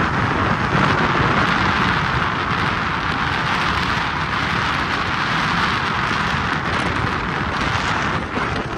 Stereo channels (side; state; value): both; identical; correlation 1.00